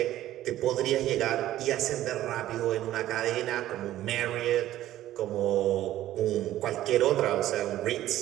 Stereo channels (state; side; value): quieter; left; 13.8 dB